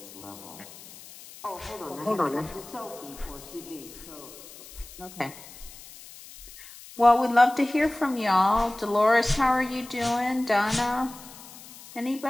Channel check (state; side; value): noise; left; hiss, 18 dB below the sound